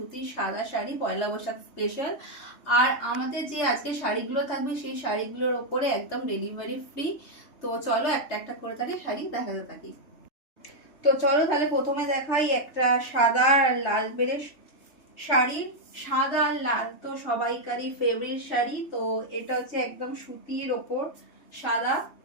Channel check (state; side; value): late; right; 3.3 ms